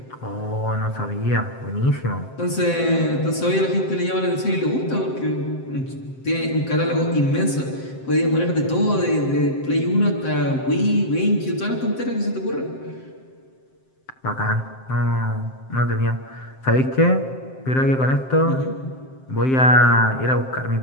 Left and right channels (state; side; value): late; right; 7.7 ms